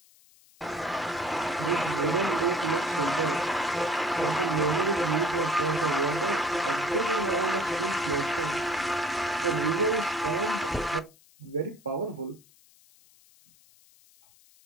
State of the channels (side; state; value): left; noise; hiss, 28 dB below the sound